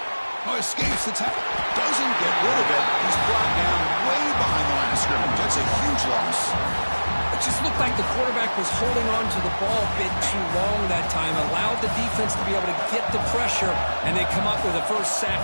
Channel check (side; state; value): both; inverted; correlation -1.00